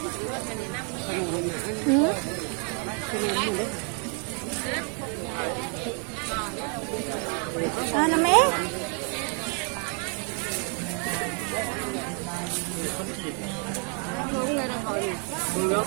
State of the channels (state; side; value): quieter; left; 39.4 dB